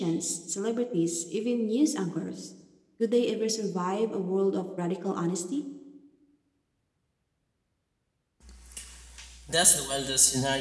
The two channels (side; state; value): both; identical; correlation 1.00